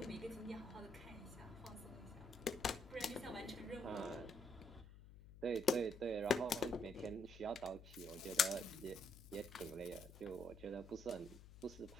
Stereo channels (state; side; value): noise; left; hum, 16 dB below the sound